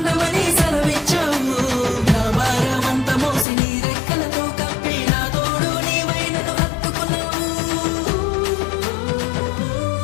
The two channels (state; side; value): drops out; right; at 3.5 s